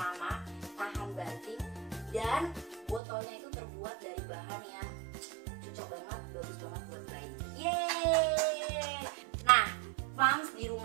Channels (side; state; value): left; drops out; at 3.0 s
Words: tahan banting, dan botolnya itu terbuat dari bahan yang cocok banget, bagus banget buat bayi. Yeay! Nah, moms di